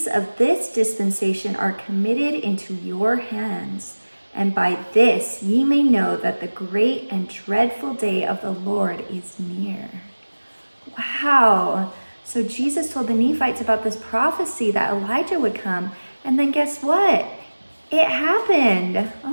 of this dispensation are committed into your hands, and by this ye may know that the great and dreadful day of the Lord is near." Wow. So Jesus told the Nephites about this prophecy that Elijah would come, and then guess what? It happened.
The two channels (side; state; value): both; inverted; correlation -1.00